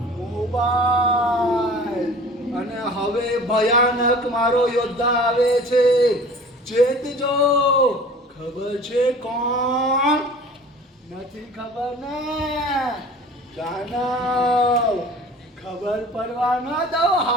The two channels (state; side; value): normal; both; correlation 0.44